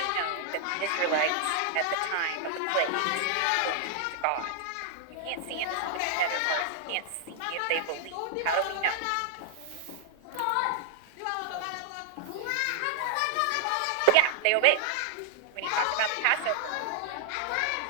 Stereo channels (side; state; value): both; different; correlation -0.01